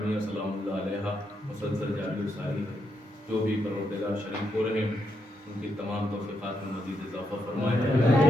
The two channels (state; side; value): normal; both; correlation 0.80